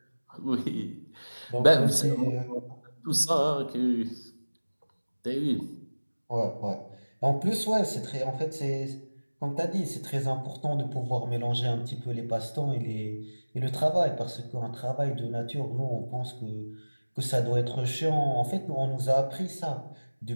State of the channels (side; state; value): both; inverted; correlation -1.00